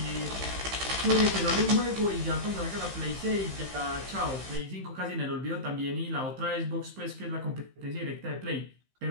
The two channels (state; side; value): late; left; 15 ms